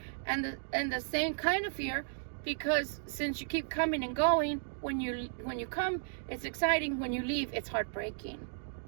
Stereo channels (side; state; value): left; silent; digital silence